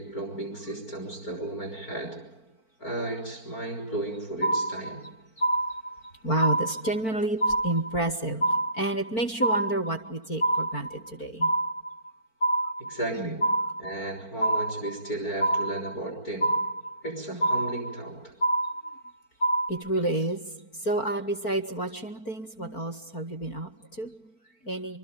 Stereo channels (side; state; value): right; late; 4.5 ms